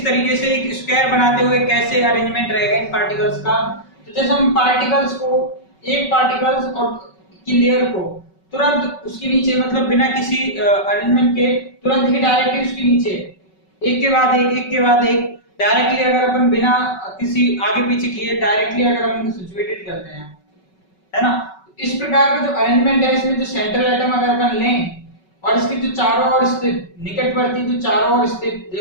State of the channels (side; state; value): right; late; 5.3 ms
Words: तरीके से एक स्क्वायर बनाते हुए कैसे अरेंजमेंट रहेगा इन पार्टिकल्स का। तो जैसे हम पार्टिकल्स को एक पार्टिकल्स और की लेयर को तुरंत उसके नीचे मतलब बिना किसी अरेंजमेंट के तुरंत ही डायरेक्टली उसके नीचे एक के बाद एक डायरेक्टली अगर अपन बिना किसी आगे पीछे किए डायरेक्टली अगर हम इनको सिचुएटेड करते हैं, है ना, इस प्रकार का जो अरेंजमेंट है इसमें जो सेंट्रल एटम अगर अपन लें और इसके जो चारों ओर स्थित निकटवर्ती जो चारों ओर स्थित